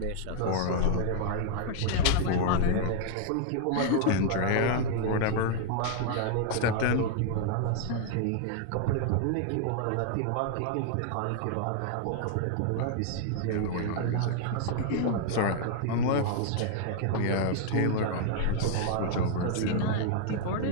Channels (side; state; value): both; different; correlation 0.00